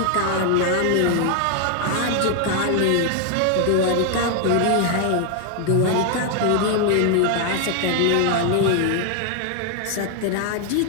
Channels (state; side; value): different; both; correlation 0.00